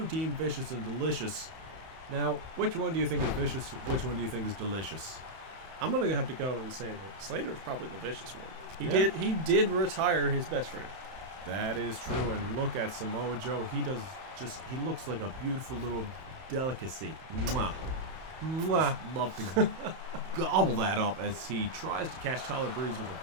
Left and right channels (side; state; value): left; late; 31 ms